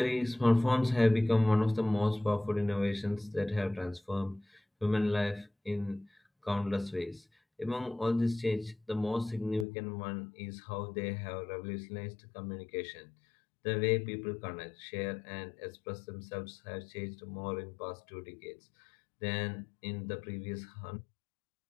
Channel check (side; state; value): right; drops out; at 9.7 s